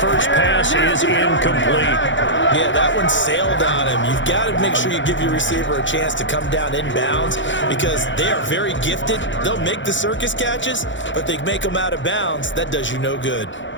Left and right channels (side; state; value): right; late; 0.55 ms